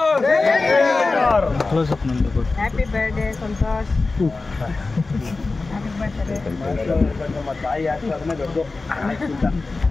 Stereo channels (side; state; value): right; quieter; 3.7 dB